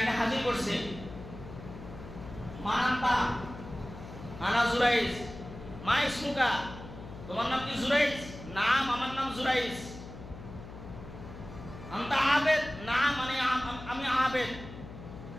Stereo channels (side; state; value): left; noise; hum, 13 dB below the sound